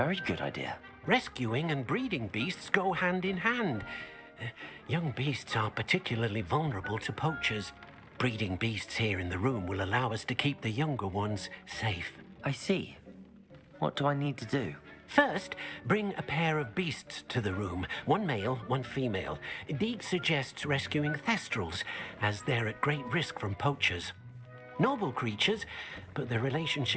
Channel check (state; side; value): identical; both; correlation 1.00